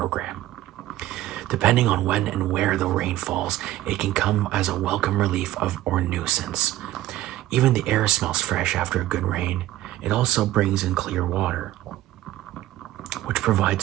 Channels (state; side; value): quieter; left; 14.9 dB